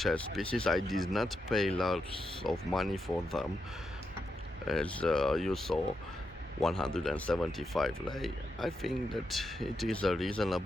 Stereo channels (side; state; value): both; normal; correlation 0.85